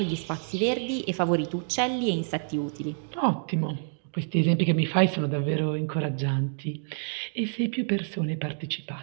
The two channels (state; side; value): silent; left; digital silence